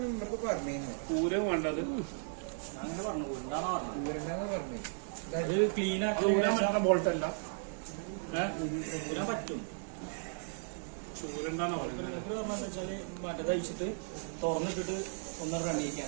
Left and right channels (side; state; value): left; silent; digital silence